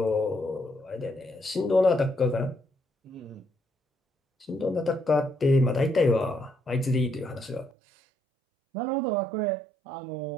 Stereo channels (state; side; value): drops out; left; at 7.7 s